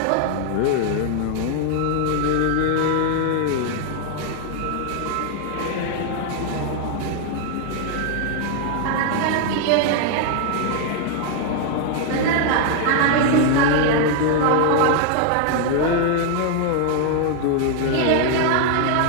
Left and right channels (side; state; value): both; different; correlation 0.00